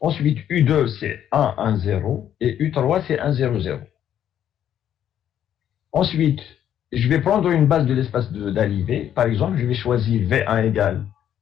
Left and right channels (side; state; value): right; quieter; 10.2 dB